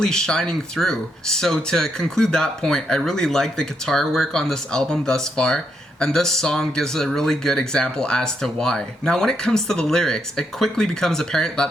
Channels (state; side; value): normal; both; correlation 0.79